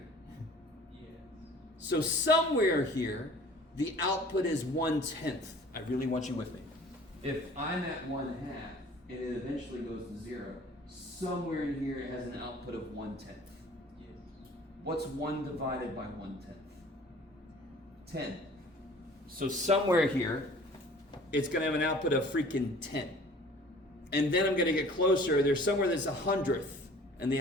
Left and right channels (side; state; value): both; normal; correlation 0.49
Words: Yes. So somewhere here, the output is 1/10. I really want you with me. If I'm at 1/2 and it eventually goes to 0, somewhere in here it has an output of 1/10. Yes. What's 1 divided by 1/10? 10. So somewhere here, it's going to have an output of freaking 10. And then I'm going to get closer. There's somewhere that's 100th, and the